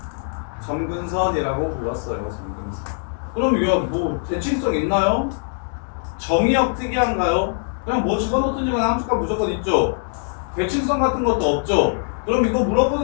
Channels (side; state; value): right; silent; 60 dB below the other